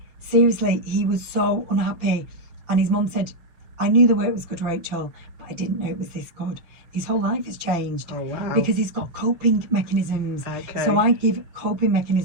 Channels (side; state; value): left; late; 6.5 ms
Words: Seriously, he was so unhappy, and his mum said, I knew the work was good, Rachel, but I didn't know it was this good. His whole life has changed because he's got coping mechanisms. So I give coping